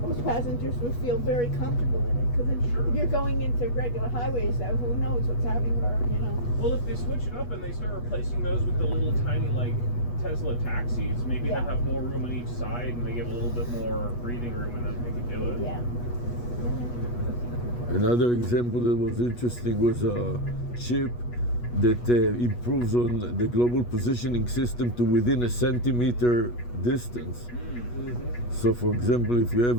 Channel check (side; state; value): right; late; 8.3 ms